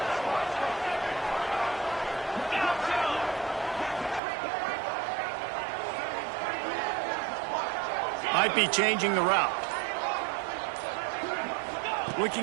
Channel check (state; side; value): drops out; left; at 4.2 s